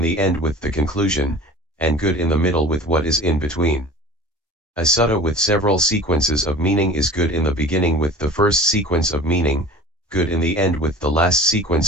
the end with the conclusion, and good in the middle with what is in between. A sutta with several sequences of meaning is good in the beginning with the first sequence of meaning, good in the end with the last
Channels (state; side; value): normal; both; correlation 0.41